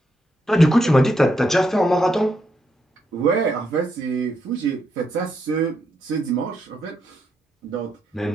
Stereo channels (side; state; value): both; normal; correlation 0.79